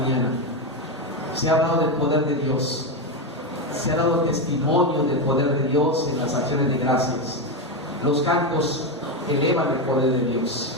Se ha hablado del poder de Dios, se ha dado testimonio del poder de Dios en las acciones de gracias. Los cantos elevan el poder de Dios.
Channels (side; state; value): both; normal; correlation 0.11